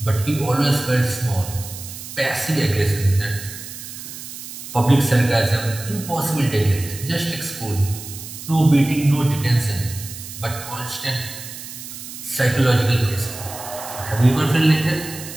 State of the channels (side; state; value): right; noise; hiss, 11 dB below the sound